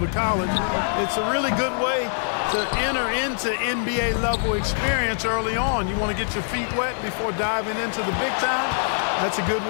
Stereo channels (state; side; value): silent; right; digital silence